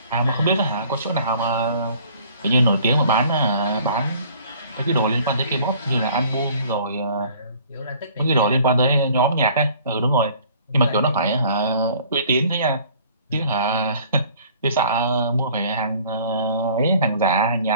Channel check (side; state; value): both; inverted; correlation -0.53